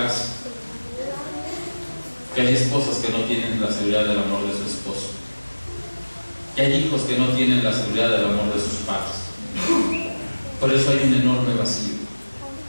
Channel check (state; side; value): inverted; both; correlation -1.00